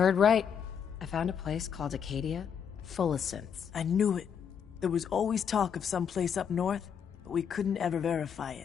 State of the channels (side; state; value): right; quieter; 7.6 dB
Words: right. I found a place called Acadia, full of synths. I knew it. There was always talk of some place up north, but we couldn't ever verify